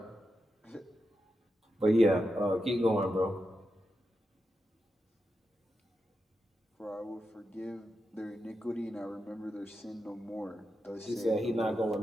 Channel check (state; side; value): normal; both; correlation 0.88